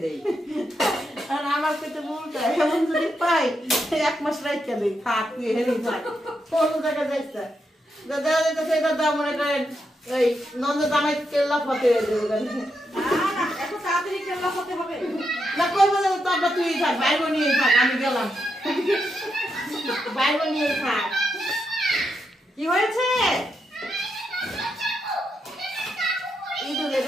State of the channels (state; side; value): normal; both; correlation 0.83